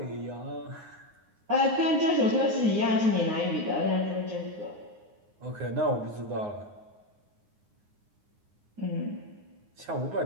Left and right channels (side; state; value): left; late; 9.6 ms